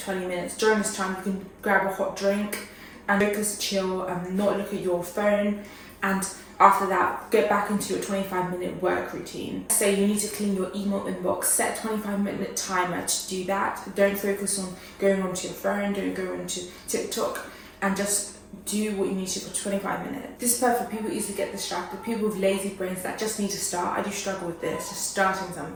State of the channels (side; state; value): both; identical; correlation 1.00